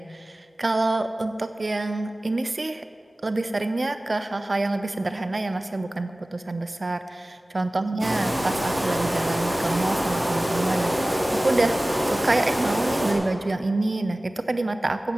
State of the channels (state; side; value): normal; both; correlation 0.98